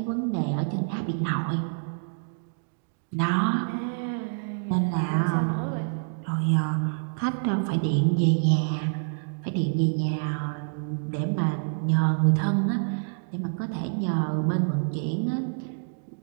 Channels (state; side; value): silent; left; digital silence